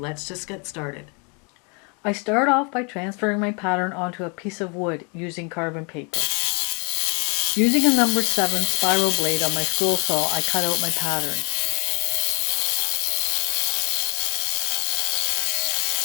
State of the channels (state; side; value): quieter; right; 34.0 dB